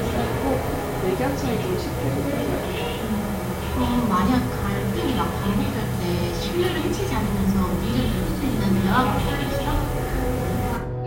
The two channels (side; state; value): both; identical; correlation 1.00